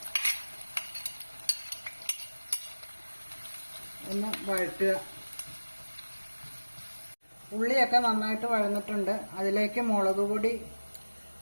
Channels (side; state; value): both; inverted; correlation -1.00